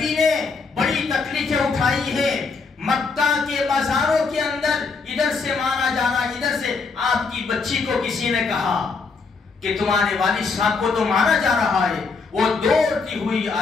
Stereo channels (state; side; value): quieter; right; 4.6 dB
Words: نے بڑی تکلیفیں اٹھائی ہے، مکہ کے بازاروں کے اندر ادھر سے مارا جانا، ادھر سے آپ کی بچی کو کسی نے کہا کہ تمہارے والد صاحب کو تو مارا جا رہا ہے، وہ دوڑتی ہوئی